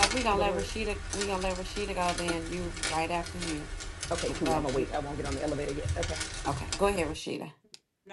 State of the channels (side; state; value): both; identical; correlation 1.00